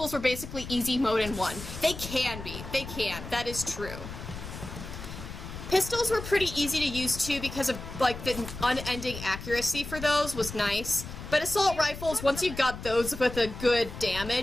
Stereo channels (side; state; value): left; noise; rumble, 10 dB below the sound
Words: were basically easy mode in 1. They can be. They can. That is true. Pistols were pretty easy to use too because of, like, the unending accuracy for those was nice. But assault rifles, once you got those with a good